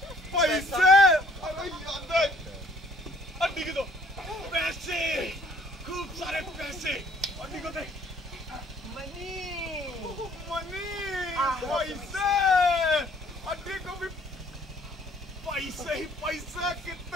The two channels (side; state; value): both; normal; correlation 0.60